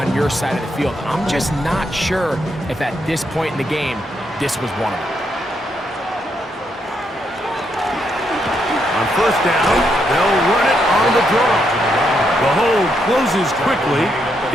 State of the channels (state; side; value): normal; both; correlation 0.78